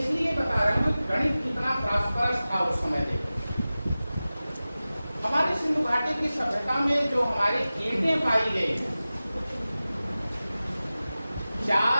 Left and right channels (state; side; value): inverted; both; correlation -0.96